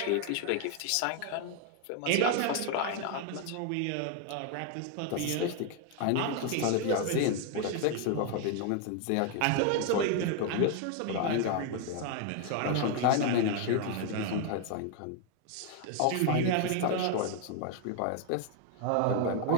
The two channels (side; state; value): both; different; correlation 0.01